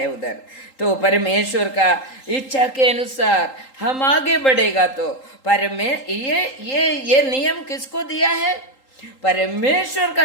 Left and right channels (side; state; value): right; late; 3.8 ms